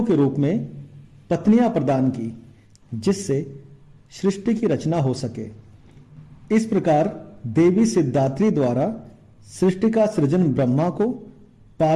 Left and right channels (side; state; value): both; identical; correlation 1.00